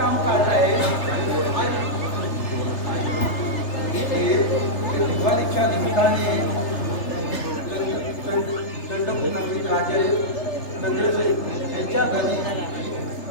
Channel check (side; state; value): right; late; 3.3 ms